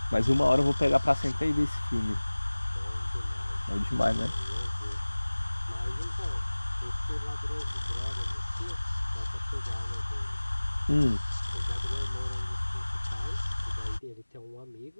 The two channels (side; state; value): both; inverted; correlation -1.00